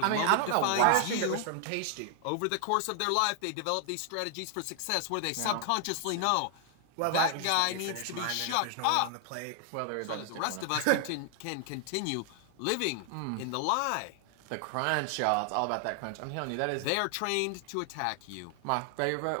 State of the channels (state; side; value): different; both; correlation 0.00